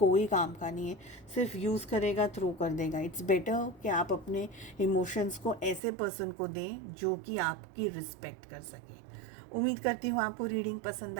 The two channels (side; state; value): left; drops out; at 5.8 s